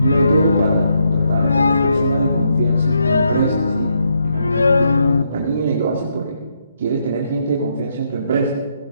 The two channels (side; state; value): both; inverted; correlation -0.77